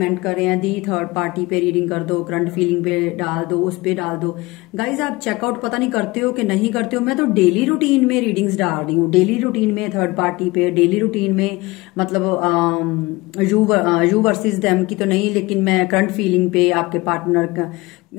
कर रहे हैं, दी थर्ड पार्टी पे रीडिंग कर दो, करंट फीलिंग पे डाल दो, उस पे डाल दो। गाइज, आप चेकआउट पता नहीं करते हो कि नहीं करते हो। मैं तो डेली रूटीन में रीडिंग्स डाल रही हूँ, डेली रूटीन में थर्ड पार्टी पे, डेली रूटीन में मतलब यू वर्सेस देम की तो नहीं, लेकिन मैं करंट फीलिंग पे, आपके पार्टनर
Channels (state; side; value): quieter; right; 22.0 dB